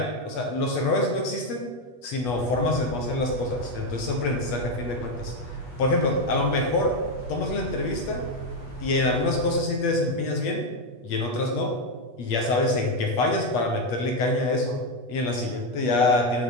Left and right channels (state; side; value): late; right; 8.3 ms